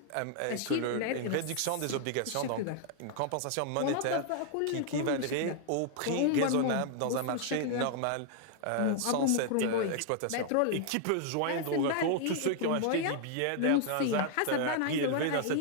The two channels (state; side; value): different; both; correlation 0.00